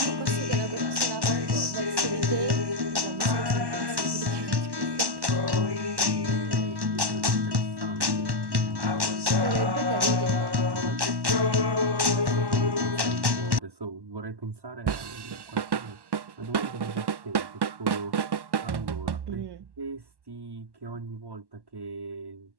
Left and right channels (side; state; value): left; late; 1.1 ms